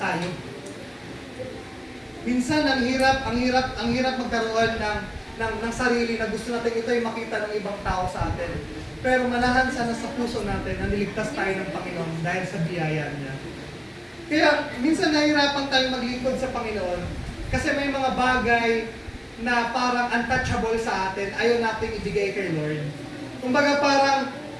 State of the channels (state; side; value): identical; both; correlation 1.00